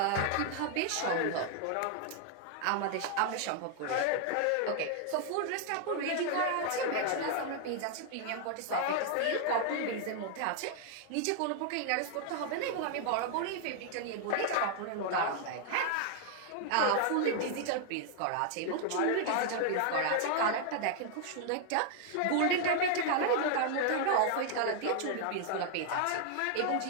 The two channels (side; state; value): both; different; correlation 0.00